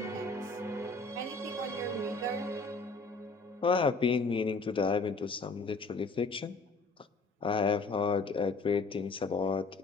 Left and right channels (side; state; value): right; quieter; 3.7 dB